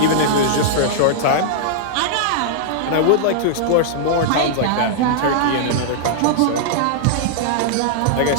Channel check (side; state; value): both; different; correlation -0.01